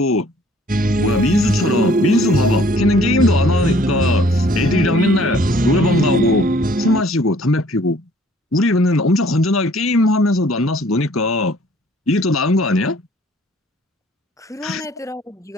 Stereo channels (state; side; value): normal; both; correlation 0.57